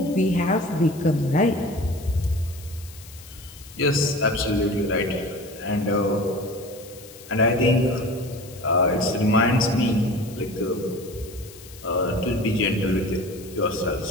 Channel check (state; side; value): noise; left; hiss, 19 dB below the sound